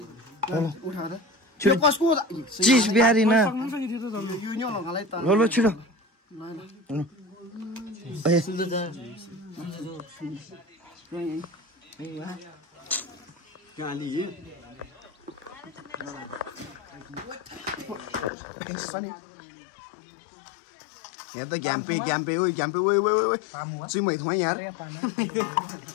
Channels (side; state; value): right; drops out; at 18.3 s